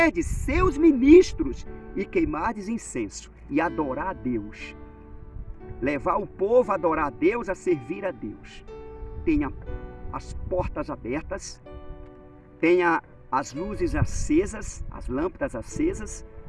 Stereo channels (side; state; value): both; identical; correlation 1.00